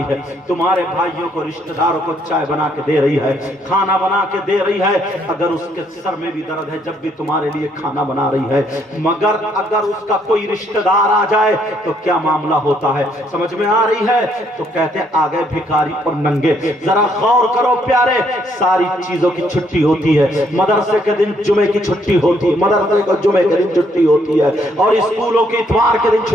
ہے، تمہارے بھائیوں کو رشتہ داروں کو چائے بنا کے دے رہی ہے، کھانا بنا کے دے رہی ہے، اگر اس کے سر میں بھی درد ہے جب بھی تمہارے لیے کھانا بنا رہی ہے، مگر اگر اس کا کوئی رشتہ دار آ جائے تو کیا معاملہ ہوتا ہے؟ سمجھ میں آ رہی ہے؟ تو کہتے ہیں آگے بھکاری اور ننگے۔ ذرا غور کرو پیارے، ساری چیزوں کی چھٹی ہوتی ہے، مدرسے کے دن جمعے کی چھٹی ہوتی ہے، مدرسے کو جمعے کے دن چھٹی ہوتی ہے، اور اسکولوں کی اتوار کے دن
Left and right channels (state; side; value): normal; both; correlation 0.70